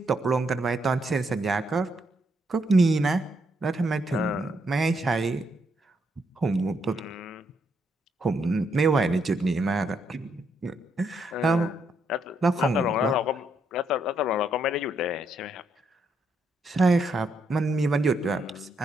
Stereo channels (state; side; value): normal; both; correlation 0.76